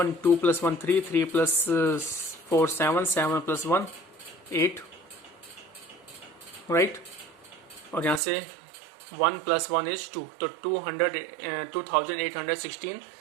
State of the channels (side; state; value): left; drops out; at 8.2 s